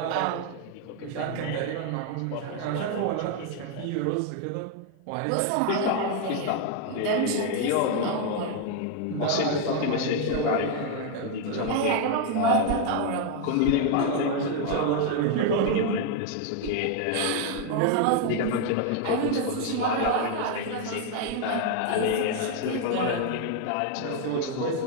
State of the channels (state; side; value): different; both; correlation 0.01